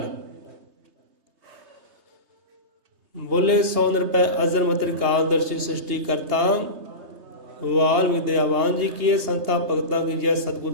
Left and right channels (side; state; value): left; late; 3.3 ms